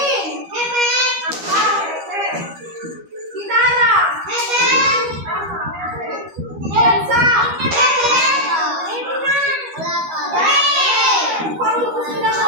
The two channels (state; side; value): late; left; 13 ms